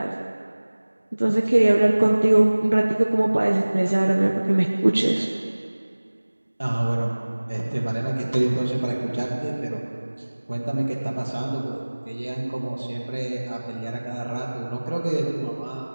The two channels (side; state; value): both; inverted; correlation -1.00